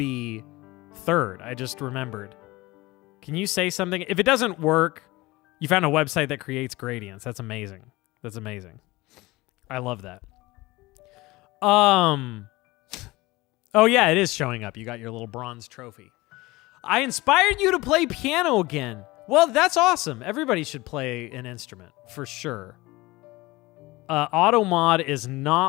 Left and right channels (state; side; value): quieter; right; 20.9 dB